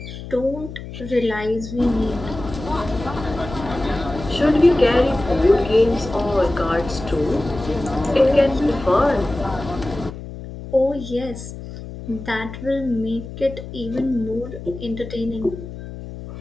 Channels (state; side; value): noise; left; hum, 11 dB below the sound